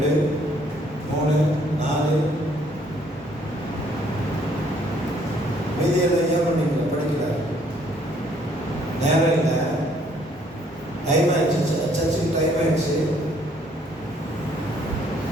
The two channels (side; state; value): both; normal; correlation 0.64